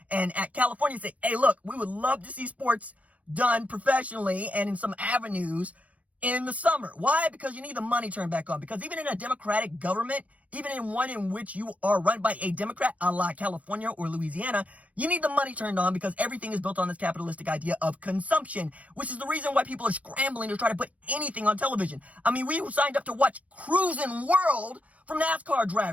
and at California say, hey, look, we would love to see sports done professionally and in some avenues in the summer. Why? Because you need the money turned back on. Because even in a democratic government, even in one in which you are run by a Democrat, a la California or Louisiana, you need the money turned on because everything is built on this capitalistic idea of consumption, which is the reason why people are scrambling to try to put anything on television. I mean, we signed up to watch Cruising World from NASCAR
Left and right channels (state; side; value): late; left; 0.068 ms